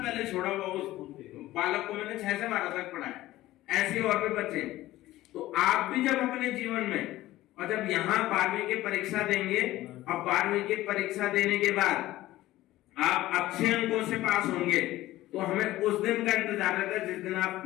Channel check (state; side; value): quieter; right; 16.1 dB